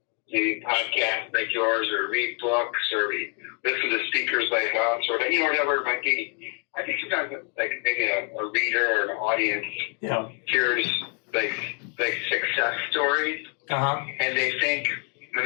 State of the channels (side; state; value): right; quieter; 39.2 dB